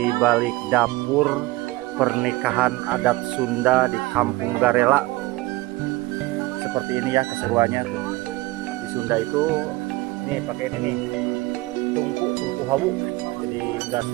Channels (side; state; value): left; quieter; 20.2 dB